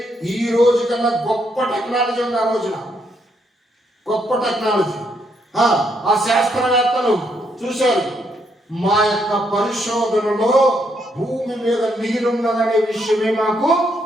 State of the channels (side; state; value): both; normal; correlation 0.75